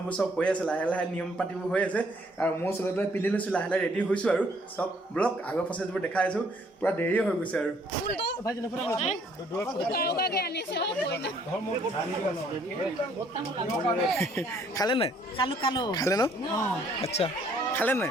চব হৈ আছে, লাহে লাহে নিয়ম পাতিবোৰ হৈ আছে আৰু মই চবে পিন্ধি লৈছোঁ, লাহে লাহে ৰেডি হৈছোঁ আৰু চব ব্লগ আগৰ প্ৰচেছবোৰ দেখাই আছোঁ। পূৰা দেৰি হৈ গৈছে আৰু খালে নাই? খালে ন? আচ্ছা খালে নাই?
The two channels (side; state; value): both; normal; correlation 0.64